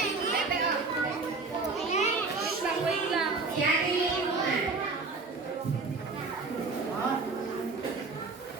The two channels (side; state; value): left; quieter; 4.1 dB